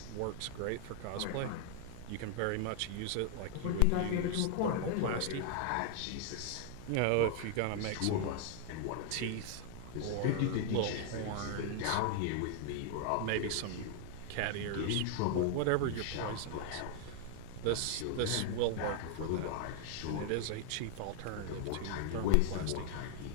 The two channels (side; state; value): both; different; correlation 0.00